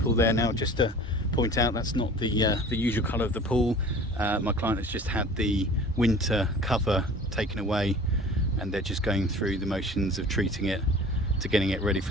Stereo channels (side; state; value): both; normal; correlation 0.44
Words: there now. Just to point out, that's not the usual colour of the pool. My client has just had the winter cover taken away, and they're just going through the motions of treating it to getting it ready